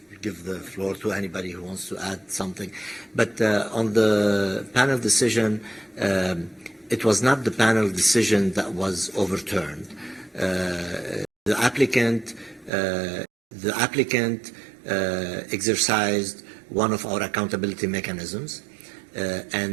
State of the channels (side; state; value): left; drops out; at 12.7 s